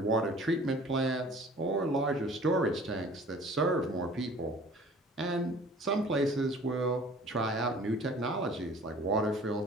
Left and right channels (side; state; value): both; normal; correlation 0.48